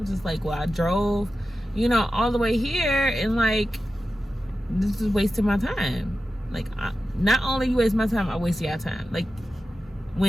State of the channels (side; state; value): both; normal; correlation 0.93